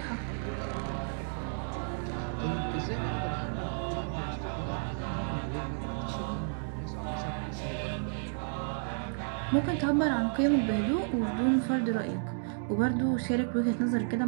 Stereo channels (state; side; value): silent; left; digital silence